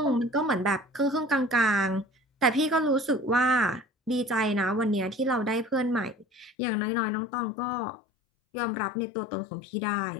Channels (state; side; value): drops out; right; at 6.6 s